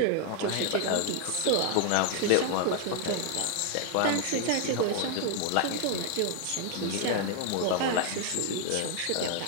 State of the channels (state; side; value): different; both; correlation 0.00